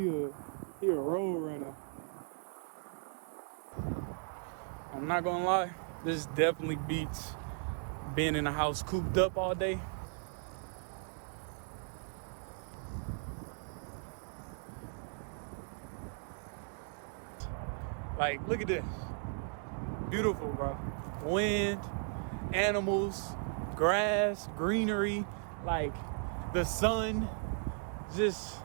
a road runner. I'm not gonna lie, this definitely beats being in the house cooped up all day. Like, look at this. Beautiful, bro. Wind, animals, grass, greenery, like the sun. Just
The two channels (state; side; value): silent; left; 53 dB below the other